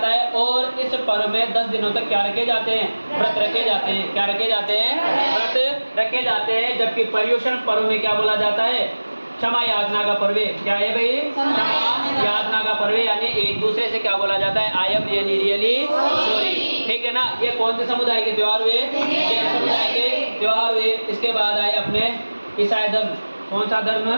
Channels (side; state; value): both; inverted; correlation -1.00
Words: है। और इस पर्व में 10 दिनों तक क्या रखे जाते हैं? व्रत रखे जाते हैं। क्या रखे जाते हैं? व्रत रखे जाते हैं। जबकि पर्युषण पर्व में क्या बोला जाता है? क्षमा याचना का पर्व। क्या है भाई? क्षमा याचना का पर्व। यानी एक दूसरे से क्या बोला जाता है? I am really really sorry, ठीक है ना। ये कौन से समुदाय के त्योहार हुए? जैन समुदाय के त्योहार हुए। इसके बाद आए अपने ईसाई धर्म। कौन सा धर्म?